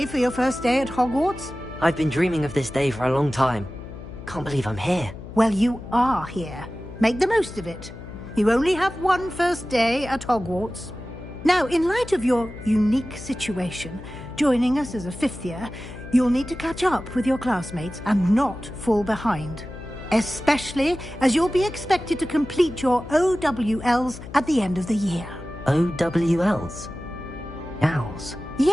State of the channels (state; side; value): noise; left; hum, 13 dB below the sound